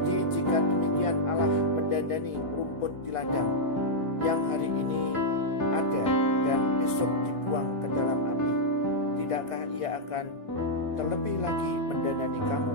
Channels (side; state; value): right; late; 1.5 ms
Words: jika demikian Allah mendandani rumput di ladang yang hari ini ada dan besok dibuang ke dalam api, tidakkah ia akan terlebih lagi mendandani kamu,